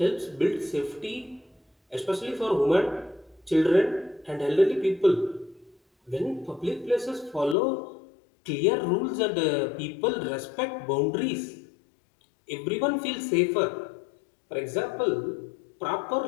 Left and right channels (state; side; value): drops out; right; at 7.6 s